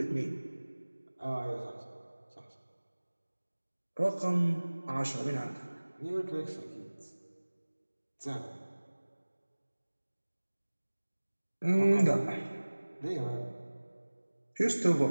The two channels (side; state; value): both; inverted; correlation -1.00